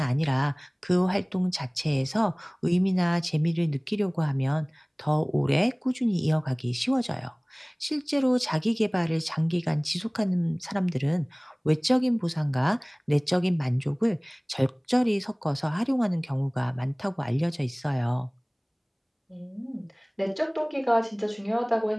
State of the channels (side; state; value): both; identical; correlation 1.00